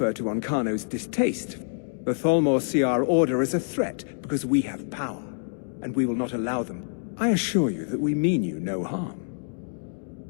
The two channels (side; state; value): right; silent; digital silence